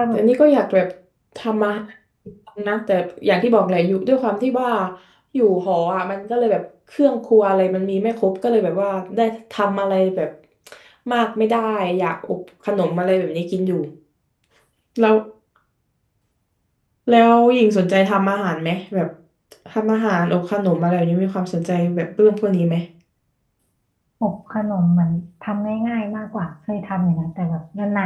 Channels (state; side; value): identical; both; correlation 1.00